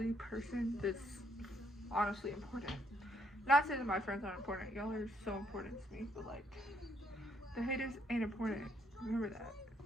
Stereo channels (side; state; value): both; normal; correlation 0.71